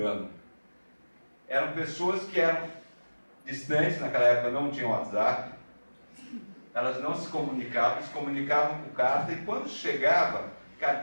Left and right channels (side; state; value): both; inverted; correlation -1.00